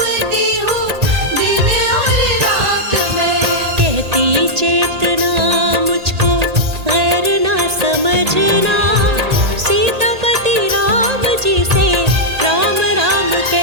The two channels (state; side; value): late; left; 1.8 ms